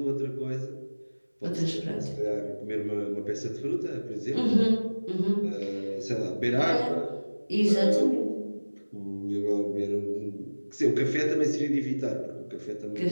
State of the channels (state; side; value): inverted; both; correlation -1.00